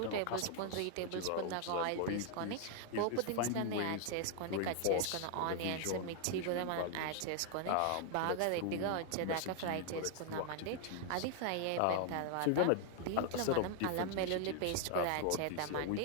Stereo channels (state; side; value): different; both; correlation 0.00